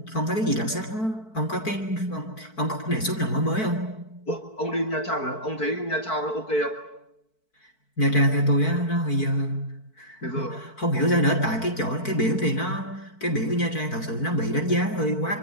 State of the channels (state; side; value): late; right; 4.5 ms